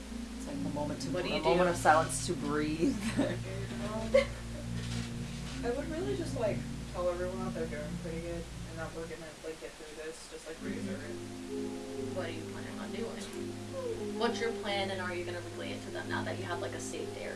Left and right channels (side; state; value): both; identical; correlation 1.00